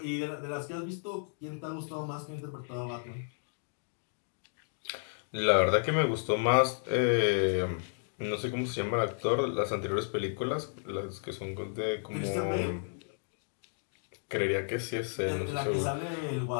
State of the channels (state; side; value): silent; right; digital silence